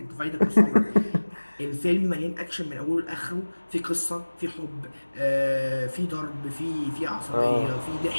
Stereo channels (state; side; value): inverted; both; correlation -1.00